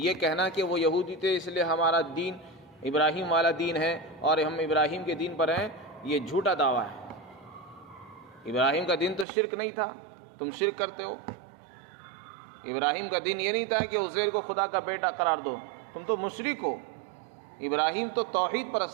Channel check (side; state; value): left; drops out; at 9.2 s